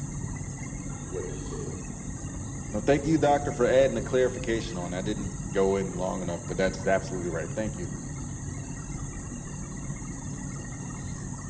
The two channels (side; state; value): both; identical; correlation 1.00